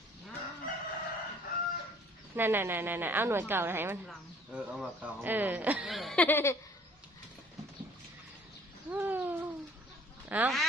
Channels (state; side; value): normal; both; correlation 0.55